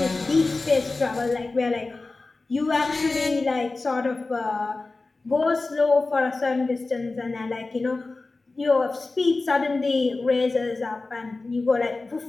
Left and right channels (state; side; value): quieter; right; 3.5 dB